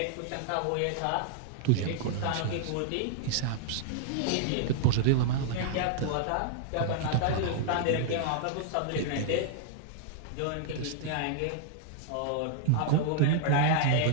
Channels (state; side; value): different; both; correlation -0.01